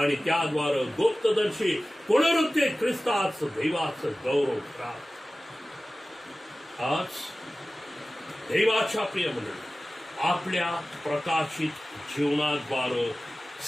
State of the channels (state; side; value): normal; both; correlation 0.96